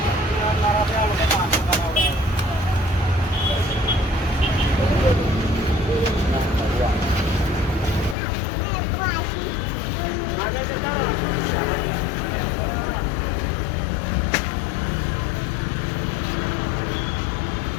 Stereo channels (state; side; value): drops out; right; at 8.2 s